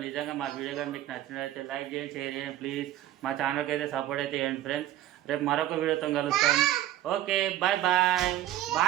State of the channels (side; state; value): left; quieter; 13.3 dB